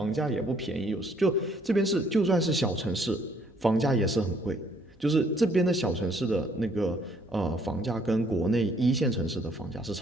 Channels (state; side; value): normal; both; correlation 0.64